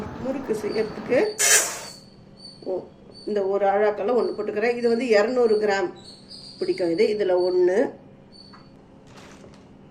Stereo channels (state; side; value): identical; both; correlation 1.00